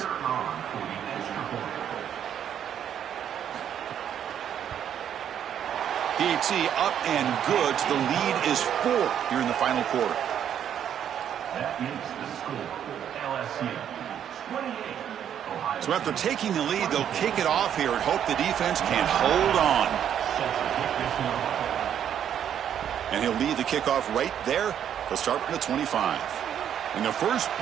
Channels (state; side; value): quieter; left; 9.4 dB